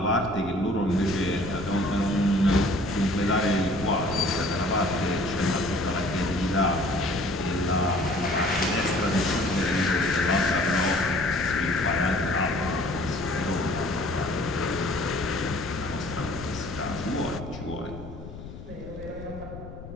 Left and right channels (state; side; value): noise; left; rumble, 13 dB below the sound